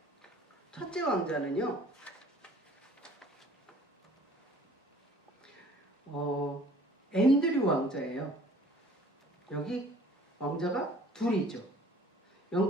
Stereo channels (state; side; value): normal; both; correlation 0.52